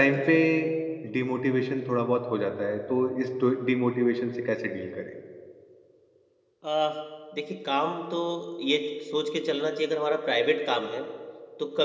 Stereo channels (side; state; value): both; identical; correlation 1.00